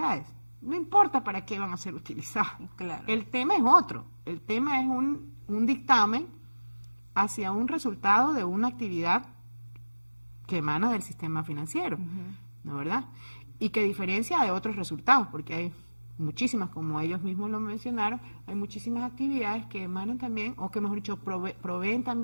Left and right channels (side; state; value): both; inverted; correlation -1.00